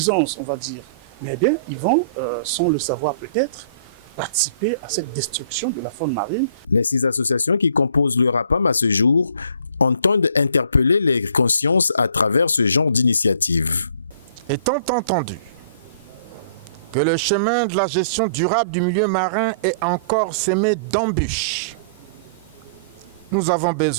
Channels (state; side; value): inverted; both; correlation -0.52